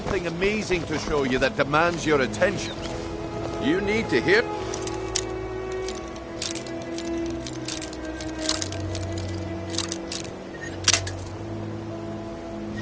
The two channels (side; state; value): both; identical; correlation 1.00